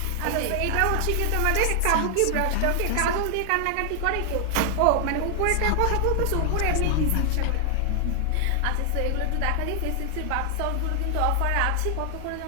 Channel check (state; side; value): different; both; correlation 0.00